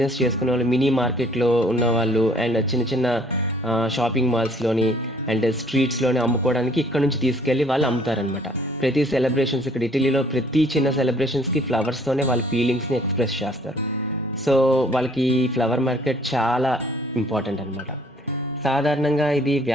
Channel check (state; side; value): normal; both; correlation 0.58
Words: చేసుకునేవాళ్ళు మినీ మార్కెట్‌లో ఉన్నవాళ్ళు అండ్ చిన్న చిన్న షాపింగ్ మాల్స్‌లోని అండ్ స్ట్రీట్స్‌లోని అమ్ముకోవడానికి ఇక్కడ నుంచి తీసుకెళ్ళి వాళ్ళు అమ్ముతారనమాట. ప్రతి సెలబ్రేషన్స్ ఇక్కడ ఇటలీలో ప్రతి చిన్న సెలబ్రేషన్స్‌కి ఫ్లవర్స్‌తోనే వాళ్ళ ఫీలింగ్స్‌ని ఎక్స్‌ప్రెస్ చేస్తారు. సో, వాళ్ళకి ఈ ఫ్లవర్ మార్కెట్ చాలా ఇంపార్టెంట్ అనమాట. సాధారణంగా ఇది